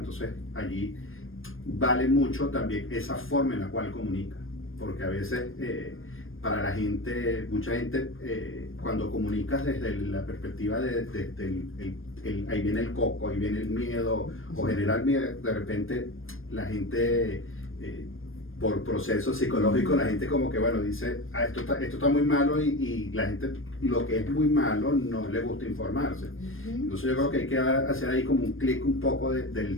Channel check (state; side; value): late; right; 0.59 ms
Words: allí vale mucho también esa forma en la cual comunica, porque a veces para la gente, mucha gente, cuando comunicas desde la perspectiva ahí viene el coco, ahí viene el miedo, o generar miedo, de repente la gente... por proceso psicológico, la gente como que, bueno, dice, esto está muy malo, y la gente, lo que es muy malo, no le gusta informarse. Entonces yo creo que hay que hacer ahí como un clic un poco